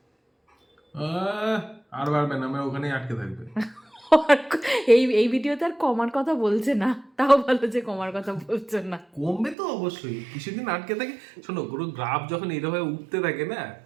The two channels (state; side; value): drops out; left; at 9.6 s